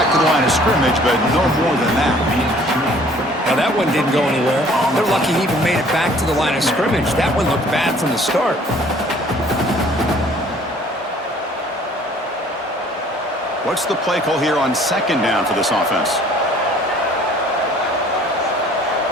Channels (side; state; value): both; normal; correlation 0.55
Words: to the line of scrimmage, but no more than that. Now that one didn't go anywhere. They're lucky he even made it back to the line of scrimmage. That one looked bad from the start. What's the play call here on second down for this offense?